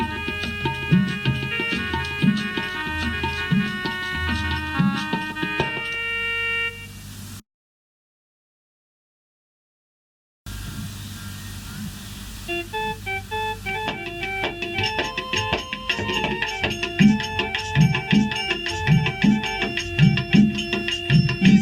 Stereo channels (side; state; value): both; identical; correlation 1.00